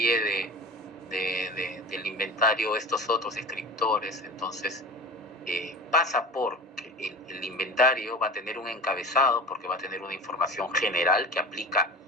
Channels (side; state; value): both; normal; correlation 0.34